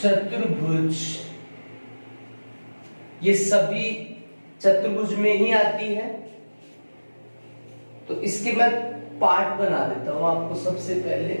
ये सभी चतुर्भुज में ही आती है। तो इसके मैं पार्ट बना देता हूं आपको। सबसे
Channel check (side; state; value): both; inverted; correlation -1.00